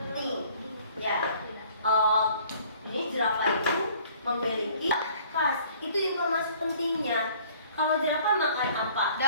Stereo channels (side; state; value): both; inverted; correlation -0.55